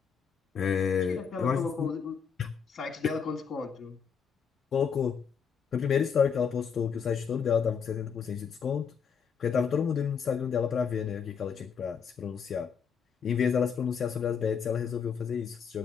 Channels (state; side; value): quieter; right; 6.8 dB